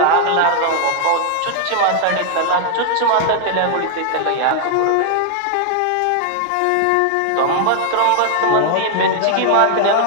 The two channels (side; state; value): both; different; correlation 0.00